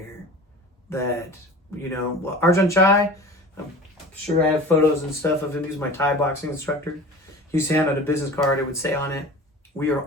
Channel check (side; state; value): both; normal; correlation 0.38